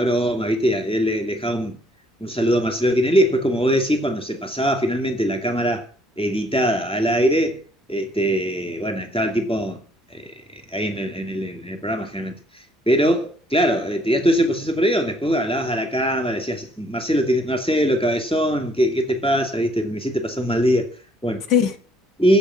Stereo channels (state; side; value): normal; both; correlation 0.65